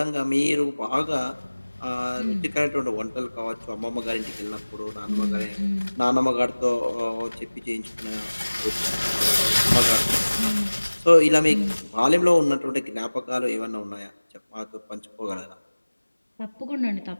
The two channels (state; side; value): inverted; both; correlation -1.00